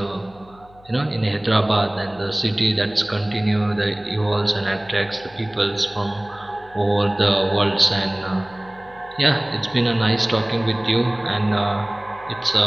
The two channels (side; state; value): left; noise; hum, 26 dB below the sound